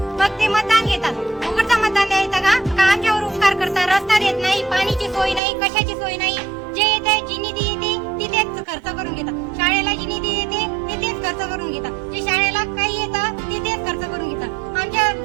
मग ते मतदान घेतात. उघडचं मतदान द्यायचं का आमच्यावर उपकार करतात? रस्ता देत नाही, पाणीची सोय नाही, कशाची सोय नाही. जे येते जी निधी येते तिथेच खर्च करून घेतात. शाळेला जी निधी येते तिथेच खर्च करून घेतात. जे शाळेला काही येतं तिथेच खर्च करून घेतात. आमच्या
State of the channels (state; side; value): drops out; left; at 5.4 s